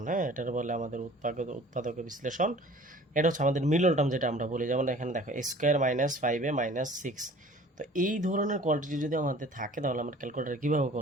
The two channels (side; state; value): both; normal; correlation 0.48